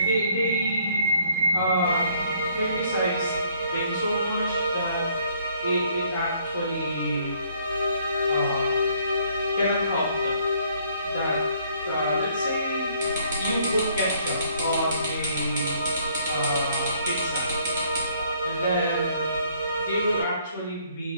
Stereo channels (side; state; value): both; inverted; correlation -0.64